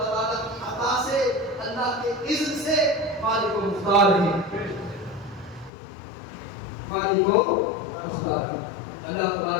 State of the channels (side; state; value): right; drops out; at 5.7 s